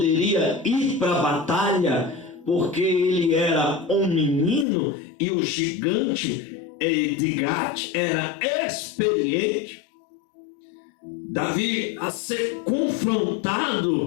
ir para a batalha, porque ele era um menino e o gigante de Gate era experiente. Davi, a ser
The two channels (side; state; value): right; drops out; at 4.7 s